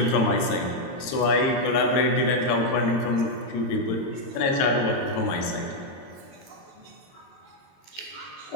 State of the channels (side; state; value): right; late; 22 ms